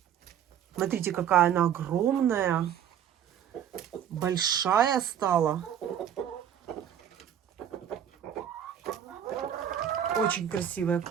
Смотрите, какая она огромная. Большая стала. Очень красивые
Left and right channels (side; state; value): left; quieter; 9.6 dB